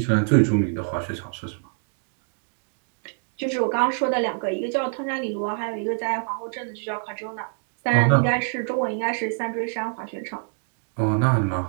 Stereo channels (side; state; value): left; silent; 62 dB below the other